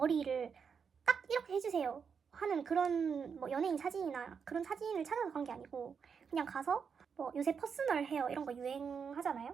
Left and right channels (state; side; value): quieter; left; 6.3 dB